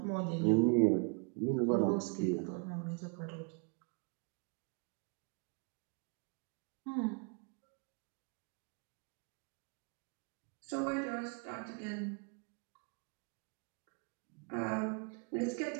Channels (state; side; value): quieter; left; 37.2 dB